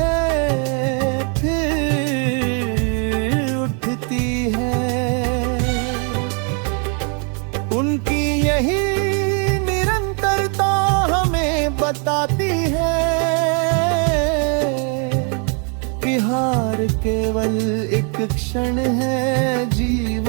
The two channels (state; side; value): quieter; left; 38.8 dB